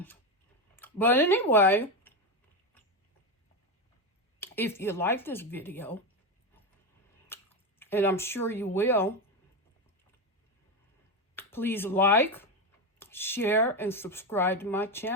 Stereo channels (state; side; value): normal; both; correlation 0.13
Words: But anyway, if you like this video, and I'm sure you will, please like, share, and subscribe to my